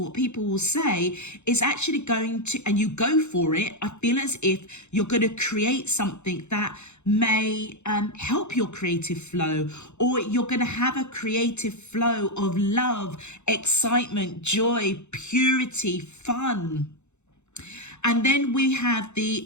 what people will say, is actually going to, and you go for it, I feel as if you're going to create something that may help your creative flow, or you're going to have a creative flow of love, excitement, joy, purity, fun. And then we have the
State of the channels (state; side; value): late; right; 0.82 ms